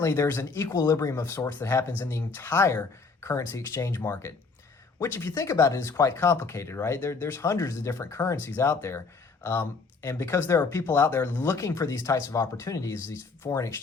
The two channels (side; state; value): right; quieter; 4.5 dB